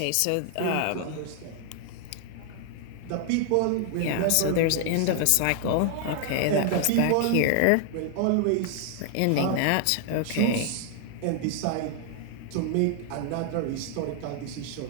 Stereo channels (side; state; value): both; different; correlation 0.00